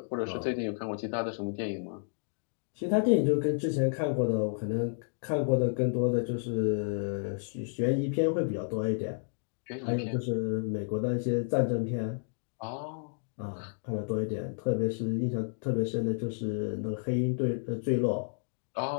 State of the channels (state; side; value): silent; right; digital silence